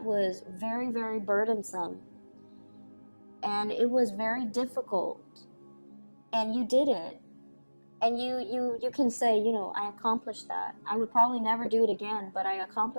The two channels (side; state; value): both; inverted; correlation -1.00